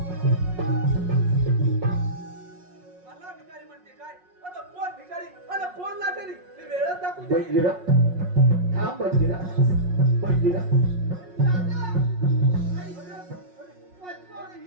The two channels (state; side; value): late; left; 5.5 ms